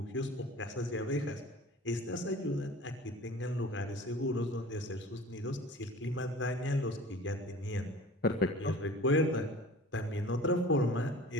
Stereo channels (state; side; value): normal; both; correlation 0.42